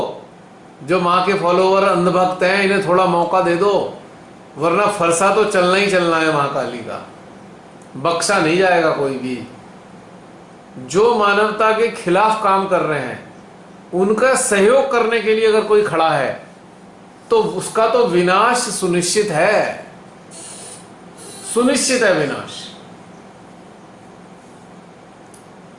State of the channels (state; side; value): identical; both; correlation 1.00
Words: जो माँ के फॉलोवर अंधभक्त हैं, इन्हें थोड़ा मौका दे दो, वरना फरसा तो चलना ही चलना है महाकाली का, बख्शा नहीं जाएगा कोई भी। जो मानवता के खिलाफ काम कर रहे हैं, उनका सहयोग करने के लिए अगर कोई खड़ा है, तो उसका तो विनाश सुनिश्चित है, सुनिश्चित है विनाश।